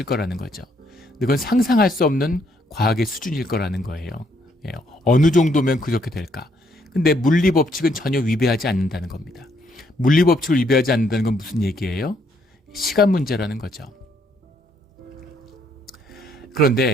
거라는 거죠. 그건 상상할 수 없는 과학의 수준일 거라는 거예요. 어느 정도면 그렇게 될까? 근데 물리 법칙은 전혀 위배하지 않는다는 겁니다. 물리 법칙을 위배하지 않는다는 건 무슨 얘기예요? 시간 문제라는 거죠.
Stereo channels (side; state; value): both; normal; correlation 0.70